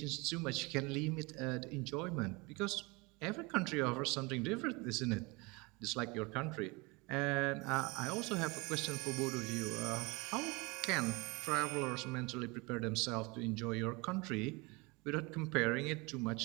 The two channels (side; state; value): left; quieter; 26.4 dB